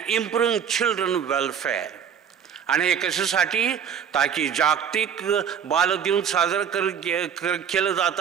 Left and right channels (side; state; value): left; quieter; 7.9 dB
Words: improving children welfare. आणि हे कशासाठी? ताकी जागतिक बालदिन साजरा केलं जात